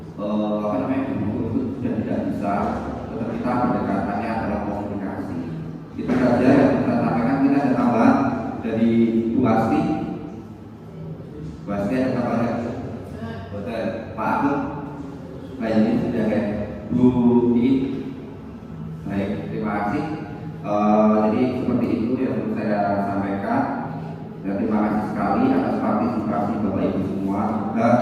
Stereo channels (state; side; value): identical; both; correlation 1.00